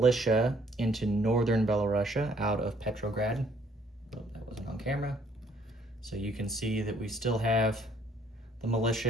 into northern Belarusia out of Petrograd. Oh, that wasn't on camera. So you can see that we still have the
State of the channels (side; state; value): both; normal; correlation 0.63